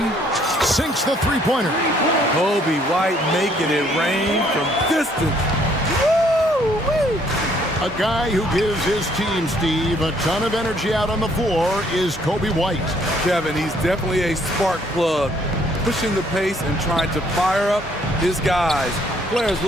Sinks the three-pointer. Kobe White making it rain from distance. Woo-wee. A guy who gives his team, Steve, a ton of energy out on the floor is Kobe White. Kevin, he's definitely a spark plug, pushing the pace and trying to fire up his guys. Players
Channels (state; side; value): normal; both; correlation 0.65